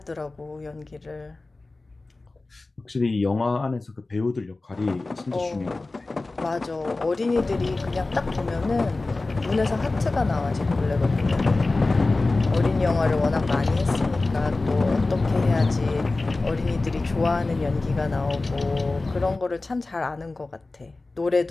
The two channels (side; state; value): right; quieter; 3.3 dB